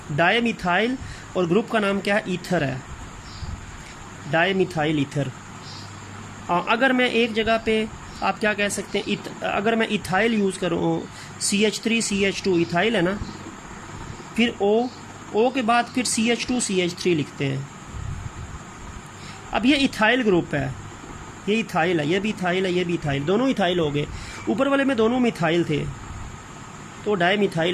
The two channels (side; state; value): both; identical; correlation 1.00